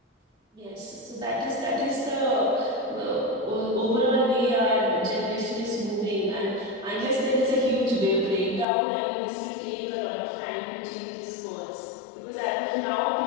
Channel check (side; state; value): right; drops out; at 8.7 s